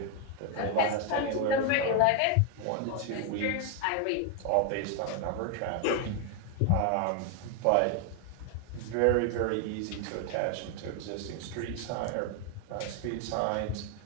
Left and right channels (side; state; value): both; different; correlation 0.01